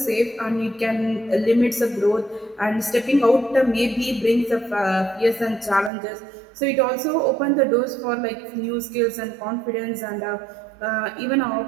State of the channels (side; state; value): left; drops out; at 5.9 s